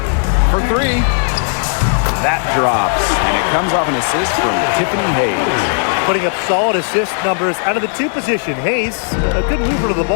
For three. That drops, and it comes off an assist from Tiffany Hayes. Putting up solid assist numbers out of the 2 position. Hayes, a good mover to the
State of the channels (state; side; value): silent; right; digital silence